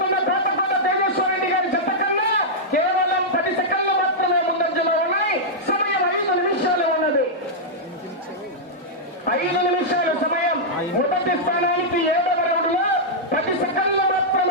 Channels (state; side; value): normal; both; correlation -0.08